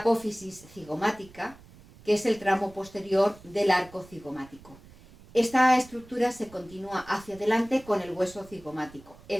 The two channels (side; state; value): right; noise; rumble, 22 dB below the sound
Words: cigomática, que es el tramo posterior del arco cigomático. Esta estructura se continúa hacia adelante con el hueso cigomático,